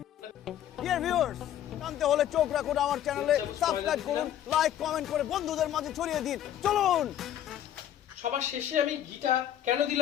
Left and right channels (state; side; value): quieter; right; 11.2 dB